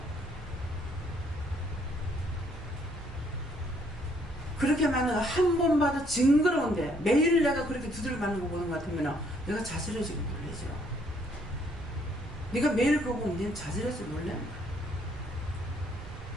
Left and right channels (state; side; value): normal; both; correlation 0.67